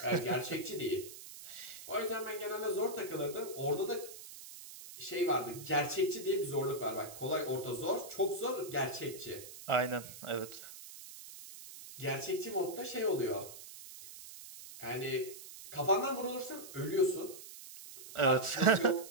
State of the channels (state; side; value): noise; right; hiss, 14 dB below the sound